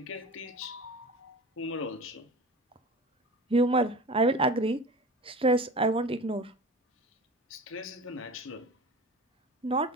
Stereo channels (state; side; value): normal; both; correlation 0.36